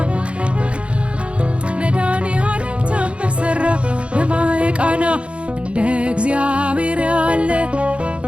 መድኃኔዓለም ታምር ሠራ በማየ ቃና እንደ እግዚአብሔር ያለ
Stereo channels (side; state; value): left; late; 0.060 ms